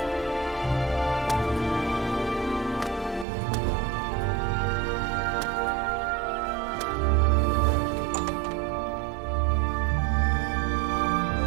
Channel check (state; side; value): drops out; left; at 3.2 s